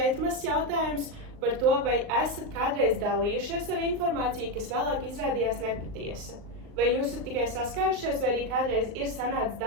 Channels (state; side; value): late; left; 38 ms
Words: mazs jautājums par to, vai esat kādreiz dalījušies ar informāciju, kas vēlāk izrādījās nepatiesa. Vai jūs esat tikai saskārušies, vai arī kādreiz ir sanācis